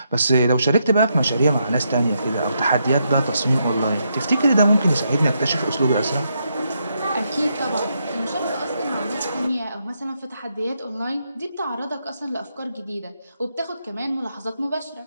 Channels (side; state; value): both; inverted; correlation -0.80